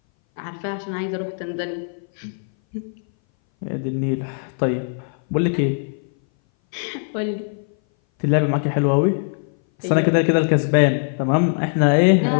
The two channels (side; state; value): right; silent; 60 dB below the other